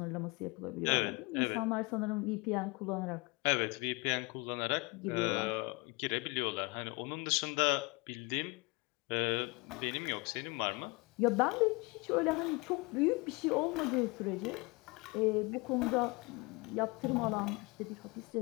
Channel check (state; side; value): quieter; right; 27.3 dB